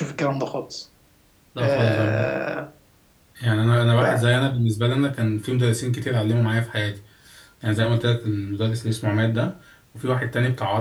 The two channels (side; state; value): both; identical; correlation 1.00